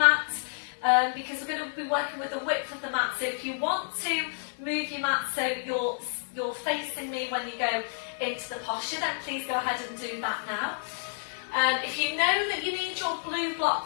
because we're going to be working with the width of the mat. So if you want to move your mat so you're facing me when you go into the posture, then please go ahead and do that now. If you know that you need your blue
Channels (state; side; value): silent; right; 58 dB below the other